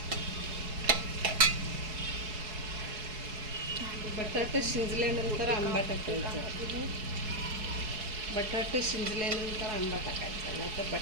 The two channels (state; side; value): late; left; 4.7 ms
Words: बटाटा शिजल्यानंतर आंबा टाकायचा. बटाटे शिजल्यानंतर आंबा टाकायचा, नाहीतर